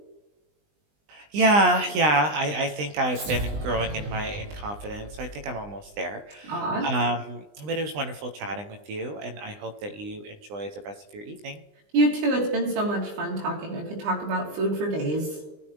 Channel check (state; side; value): late; left; 20 ms